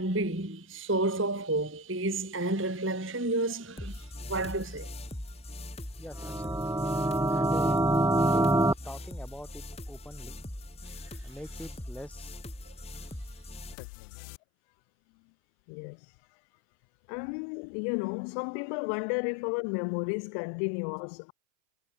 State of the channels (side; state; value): right; drops out; at 13.8 s